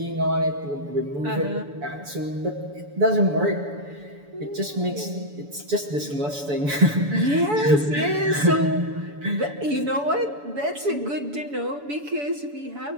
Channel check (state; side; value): late; left; 7.0 ms